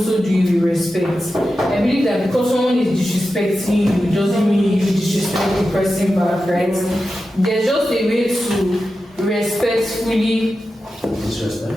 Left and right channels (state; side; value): normal; both; correlation 0.92